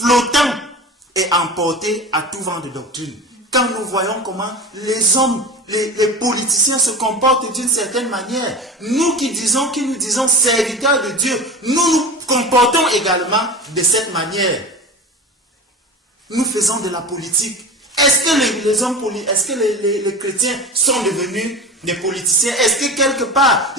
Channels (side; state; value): both; normal; correlation 0.31